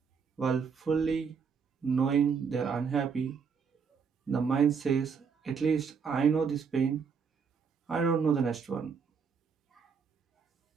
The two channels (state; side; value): quieter; left; 6.0 dB